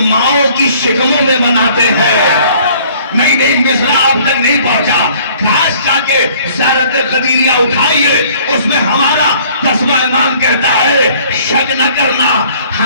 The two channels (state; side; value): inverted; both; correlation -0.56